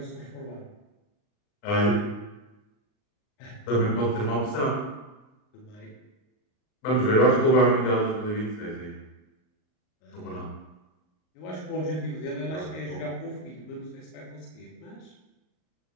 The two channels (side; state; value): right; late; 38 ms